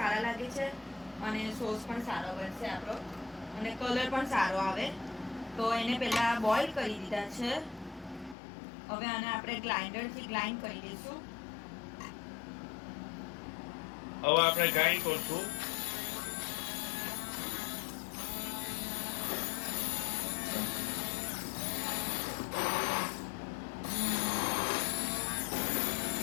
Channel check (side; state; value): right; drops out; at 8.3 s